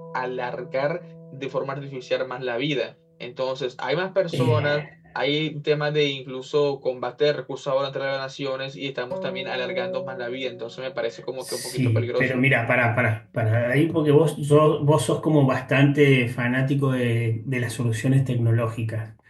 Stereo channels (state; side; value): identical; both; correlation 1.00